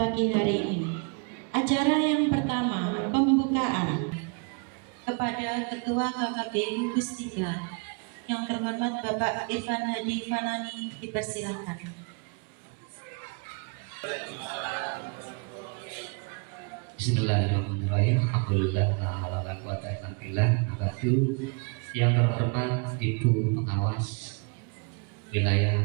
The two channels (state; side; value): quieter; left; 35.2 dB